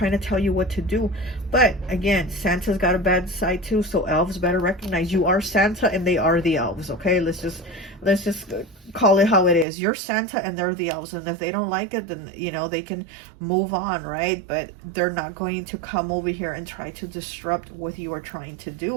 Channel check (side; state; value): left; drops out; at 9.7 s